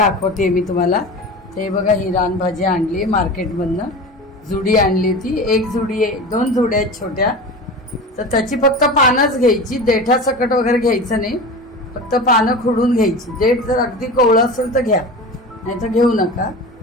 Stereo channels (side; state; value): both; normal; correlation 0.31